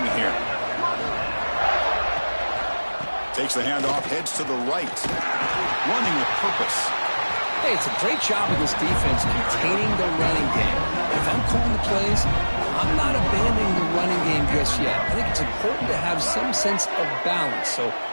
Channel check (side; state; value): both; inverted; correlation -1.00